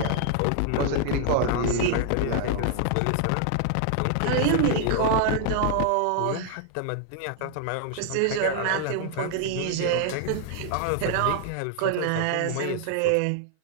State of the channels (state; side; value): different; both; correlation 0.00